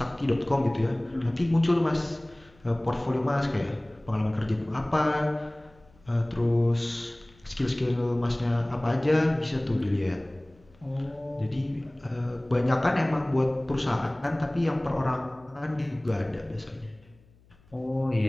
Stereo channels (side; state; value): left; noise; hum, 29 dB below the sound